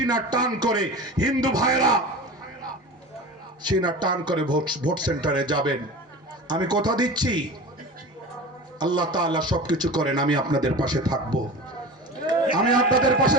টান করে, হিন্দু ভাইরা সিনা টান করে ভোট সেন্টারে যাবেন। আমি কথা দিচ্ছি, আল্লাহ তাআলা সবকিছু করেন, আমি আপনাদের পাশে থাকবো, আমি আপনাদের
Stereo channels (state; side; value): normal; both; correlation 0.33